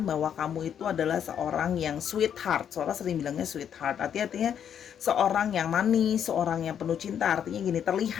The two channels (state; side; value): quieter; right; 8.7 dB